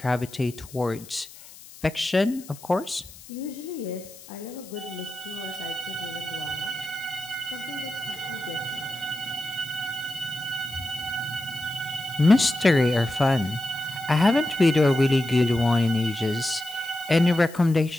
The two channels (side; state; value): left; noise; hiss, 19 dB below the sound